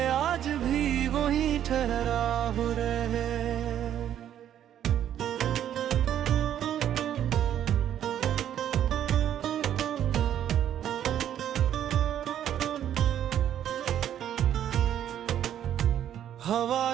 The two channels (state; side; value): quieter; left; 10.5 dB